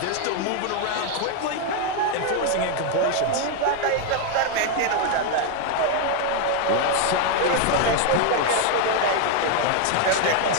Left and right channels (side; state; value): both; different; correlation 0.01